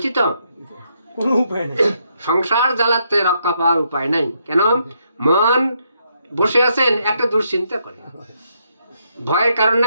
কোনো উপায় নেই। সংসার জ্বালাতে রক্ষা পাওয়ার উপায় নাই। কেন? মন বসে আছেন একটা দুশ্চিন্তা করে, ভয়ের কারণে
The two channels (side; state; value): both; inverted; correlation -0.76